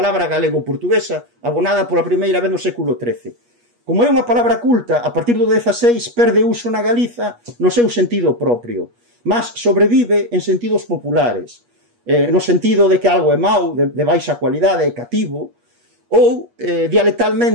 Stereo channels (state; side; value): late; left; 8.3 ms